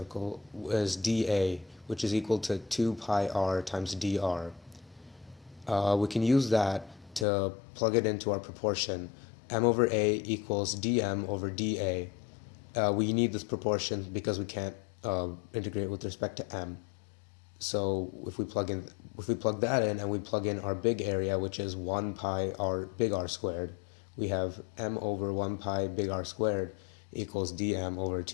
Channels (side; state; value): right; drops out; at 7.2 s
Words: is dA, which is equal to 2 pi r times dr. We can use that to plug it into our proportion. M over A equals dm over dA. We need this proportion because we can't integrate with respect to m. So if we plug that in and we plug in our big area, which is 1 pi r big R squared, we have m over 1 pi big R squared equals dm over